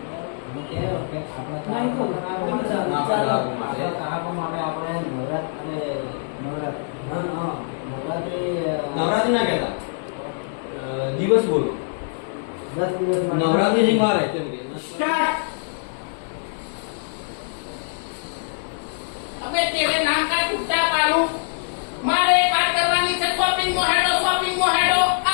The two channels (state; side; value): silent; right; digital silence